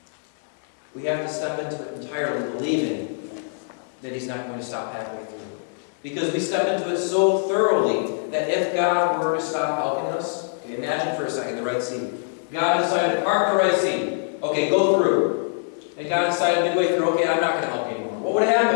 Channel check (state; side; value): silent; right; digital silence